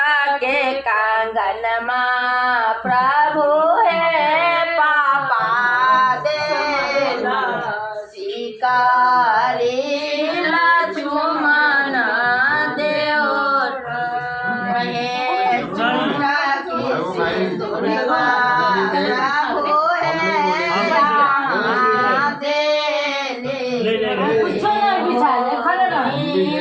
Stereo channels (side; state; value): both; identical; correlation 1.00